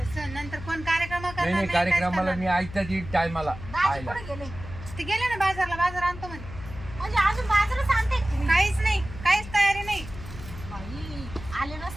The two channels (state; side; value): noise; left; hum, 13 dB below the sound